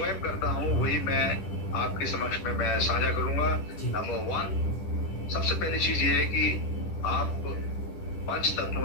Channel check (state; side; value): late; right; 10 ms